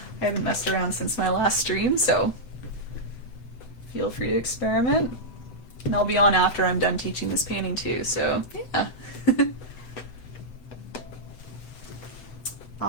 haven't messed around since my last stream, so feel free to experiment. And I'll be on after I'm done teaching this painting too, so yeah.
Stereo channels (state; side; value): late; right; 7.9 ms